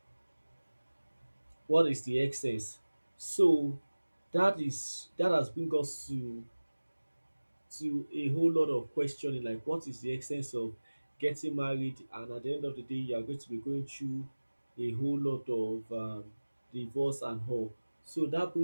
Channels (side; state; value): both; inverted; correlation -1.00